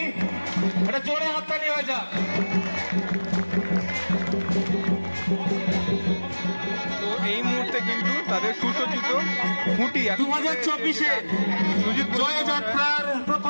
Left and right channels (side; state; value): both; inverted; correlation -1.00